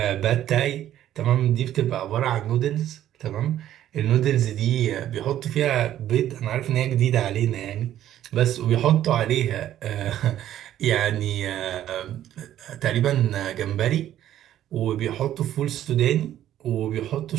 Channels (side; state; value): left; quieter; 12.0 dB